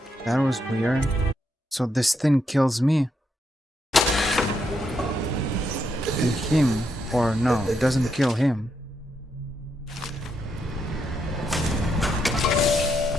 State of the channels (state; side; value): normal; both; correlation 0.79